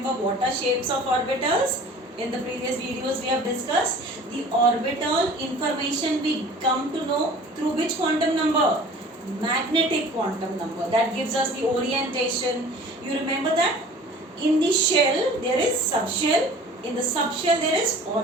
what are shapes of orbitals. In the previous videos we have discussed the orbital information we come to know through which quantum number? Magnetic quantum number. That gives us the orientation. You remember that? In the shell there is subshell. In the subshell there is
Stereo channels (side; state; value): both; normal; correlation 0.45